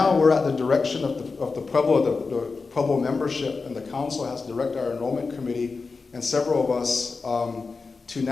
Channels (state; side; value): quieter; right; 4.4 dB